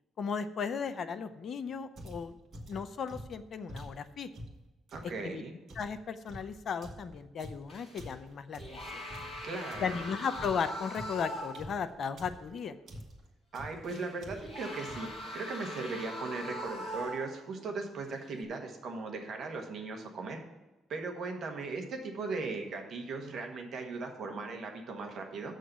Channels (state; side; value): normal; both; correlation 0.67